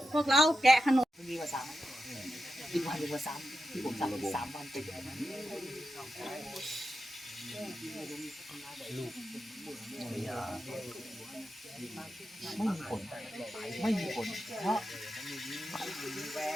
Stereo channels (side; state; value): both; normal; correlation 0.89